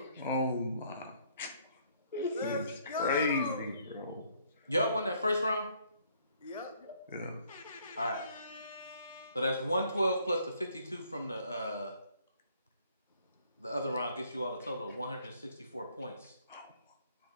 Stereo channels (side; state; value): both; inverted; correlation -0.64